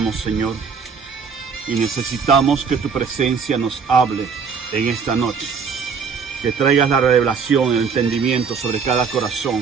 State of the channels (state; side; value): quieter; left; 5.9 dB